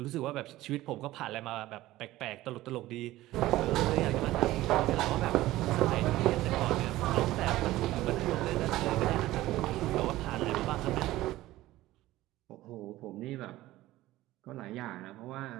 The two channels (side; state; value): left; quieter; 16.4 dB